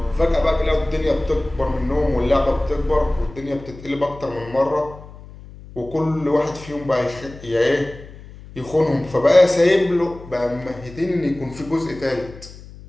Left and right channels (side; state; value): left; noise; hum, 17 dB below the sound